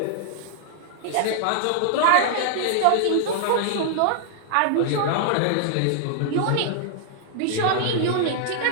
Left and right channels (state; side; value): different; both; correlation -0.01